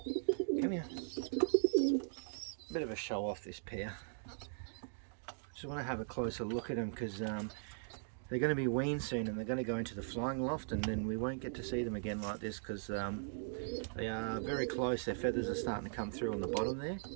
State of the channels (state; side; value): silent; left; digital silence